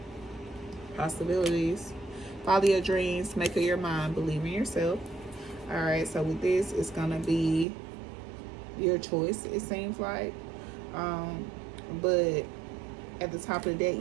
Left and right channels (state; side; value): drops out; left; at 7.7 s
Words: Possibilities. Follow your dreams. Make up your mind. Believe in yourself. All right, so with this, it's going to be your choice, it seems like. But at the top of the deck,